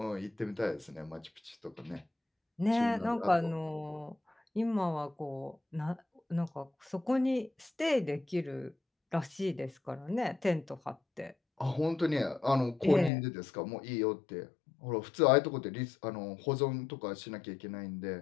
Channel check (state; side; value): drops out; right; at 13.1 s